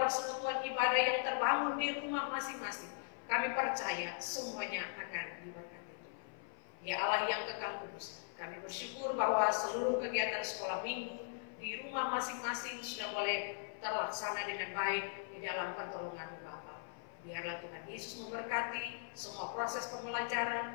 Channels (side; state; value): right; silent; 51 dB below the other